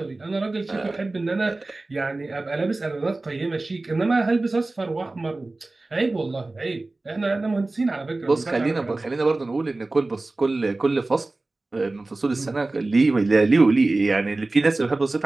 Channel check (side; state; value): left; quieter; 3.1 dB